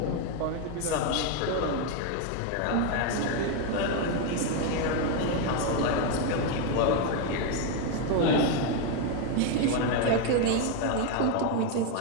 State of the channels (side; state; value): both; different; correlation 0.01